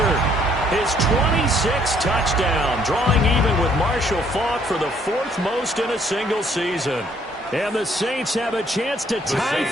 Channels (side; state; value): both; normal; correlation 0.65